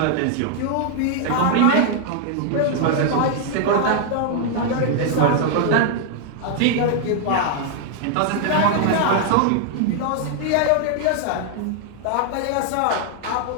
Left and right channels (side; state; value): both; different; correlation 0.00